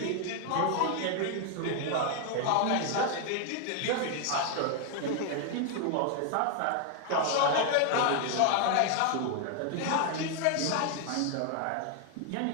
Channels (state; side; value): different; both; correlation 0.00